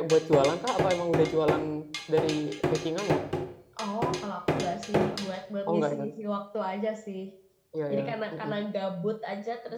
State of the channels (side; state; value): both; identical; correlation 1.00